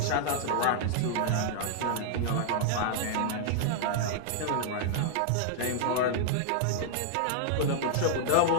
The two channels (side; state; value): both; different; correlation -0.01